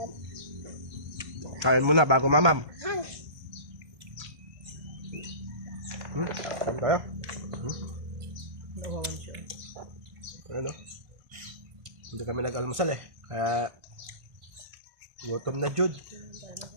Kain muna bago mamam. Kain tayo. Nawawan siya. Ano? Hindi kami nag-almusal eh. Kaya gutom na Jude.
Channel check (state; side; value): late; left; 1.2 ms